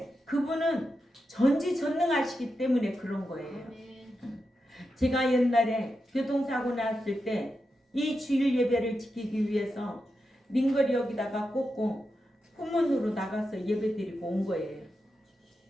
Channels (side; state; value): both; normal; correlation 0.88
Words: 그분은 전지전능하시기 때문에 그런 거예요. 제가 옛날에 교통사고 났을 때 이 주일 예배를 지키기 위해서 링거리 여기다가 꽂고 후문으로 나가서 예배 드리고 온 거예요.